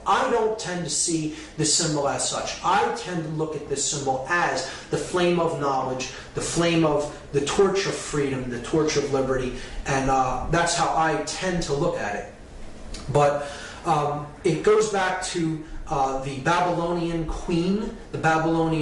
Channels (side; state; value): both; identical; correlation 1.00